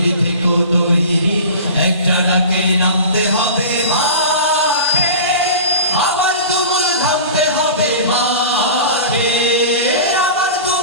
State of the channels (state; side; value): inverted; both; correlation -0.35